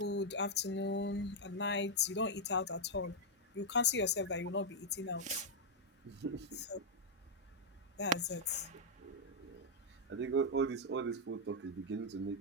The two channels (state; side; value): normal; both; correlation -0.04